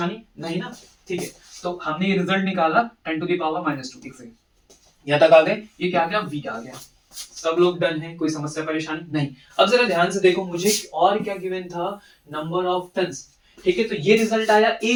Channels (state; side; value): identical; both; correlation 1.00